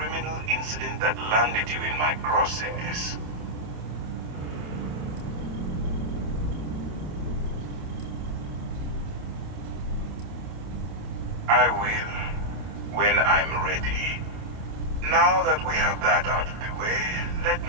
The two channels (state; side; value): late; left; 28 ms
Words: incident that landed you in my crosshairs. I will, when I'm ready. Now that we have that out of the way, let